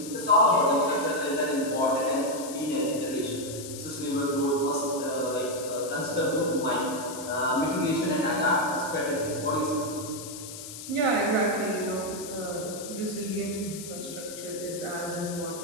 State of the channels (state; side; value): noise; left; hiss, 11 dB below the sound